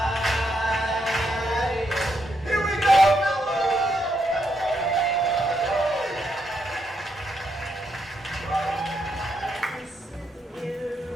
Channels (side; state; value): both; normal; correlation 0.79